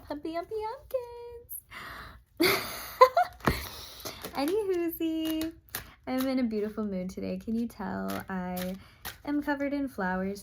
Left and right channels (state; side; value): identical; both; correlation 1.00